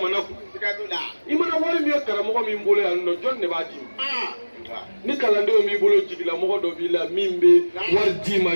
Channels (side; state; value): both; inverted; correlation -1.00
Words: kun i mana wari min ye karamɔgɔ min bolo yan nɔ jɔn de b'a d'i ma ni kalandenw b'i bolo jigilamɔgɔ dɔ b'i la min bɛ wari d'i